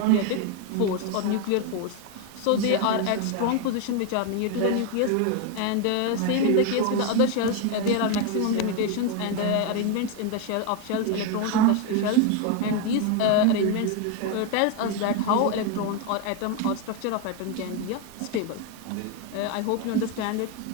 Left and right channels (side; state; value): both; different; correlation 0.01